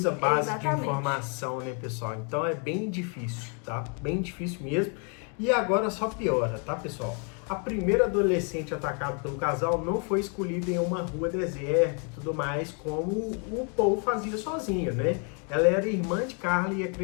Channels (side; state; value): right; quieter; 37.9 dB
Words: base Exatamente. de informação, né, pessoal? Então é bem difícil, tá? Bem difícil mesmo. E agora só piora, tá, pessoal? A primeira adolescente atacada pelo casal não foi escolhida em uma rua deserta e tudo mais, como o Paul fazia sozinho, né? Ela era irmã de Carla e